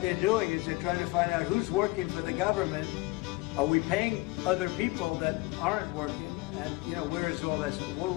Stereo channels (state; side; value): quieter; right; 22.8 dB